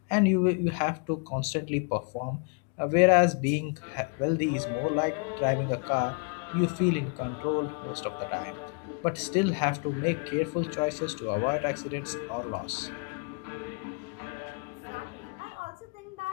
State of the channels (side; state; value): right; quieter; 36.8 dB